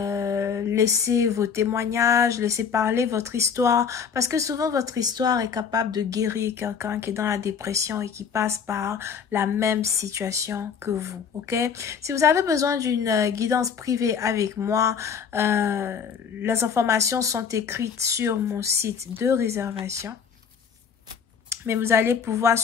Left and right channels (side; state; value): right; quieter; 6.8 dB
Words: vos témoignages, laissez parler votre histoire. Parce que souvent, votre histoire est capable de guérir quelqu'un qui est dans la dépression et qui passe par la même situation que vous, ok? Si vous avez besoin d'une guidance privée avec moi, les informations sont écrites sur mon site de réservation. Mais vous allez pouvoir